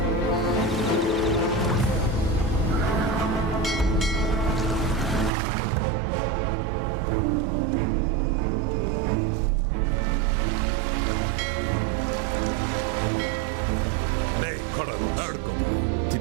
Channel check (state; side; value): drops out; left; at 5.3 s